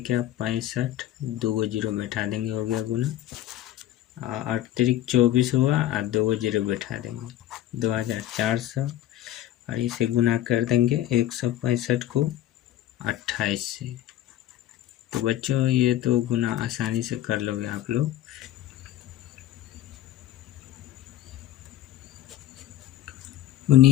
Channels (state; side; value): quieter; right; 12.9 dB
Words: 65, 2 0 बैठा देंगे, हो गया गुना। अतिरिक्त 24 हुआ और 2 0 बैठा देंगे, 2400। और इसे गुना कर देंगे 165 को 28 से। तो बच्चों ये तो गुना आसानी से कर लोगे आप लोग।